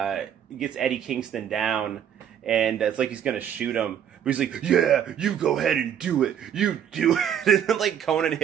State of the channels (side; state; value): left; quieter; 9.2 dB